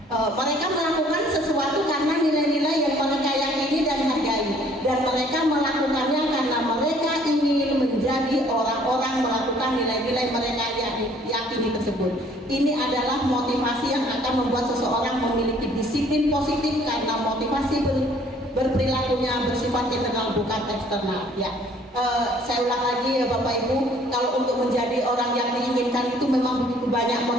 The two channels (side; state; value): both; normal; correlation 0.58